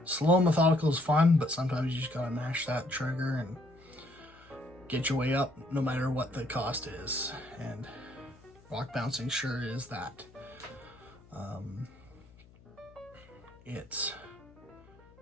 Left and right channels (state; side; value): noise; left; hum, 25 dB below the sound